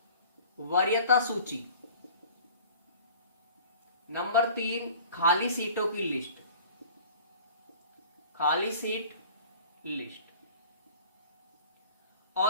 वरीयता सूची। नंबर 3 खाली सीटों की लिस्ट, खाली सीट लिस्ट।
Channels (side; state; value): both; inverted; correlation -0.46